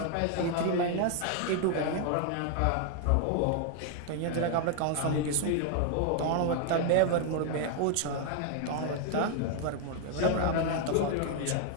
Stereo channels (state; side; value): different; both; correlation 0.00